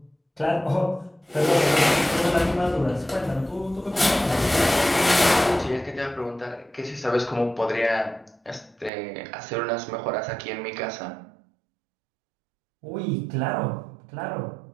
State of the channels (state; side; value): drops out; left; at 8.9 s